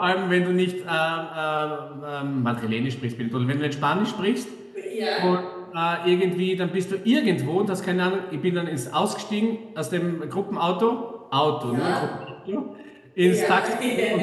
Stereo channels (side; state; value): both; identical; correlation 1.00